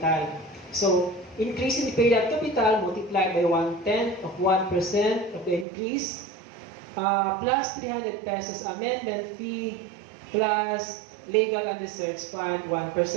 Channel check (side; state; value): left; drops out; at 5.7 s